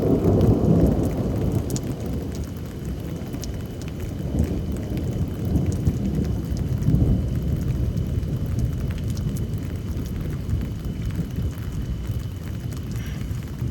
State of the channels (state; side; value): identical; both; correlation 1.00